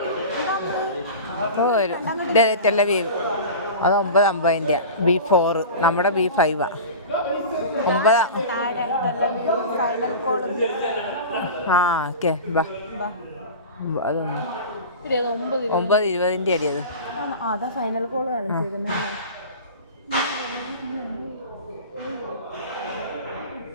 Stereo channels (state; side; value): inverted; both; correlation -0.32